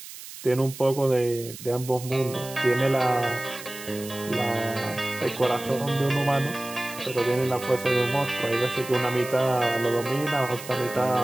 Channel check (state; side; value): noise; right; hiss, 14 dB below the sound